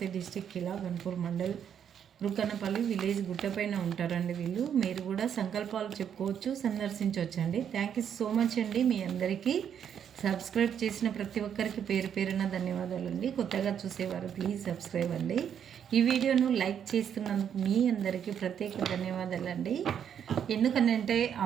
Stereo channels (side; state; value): left; quieter; 8.6 dB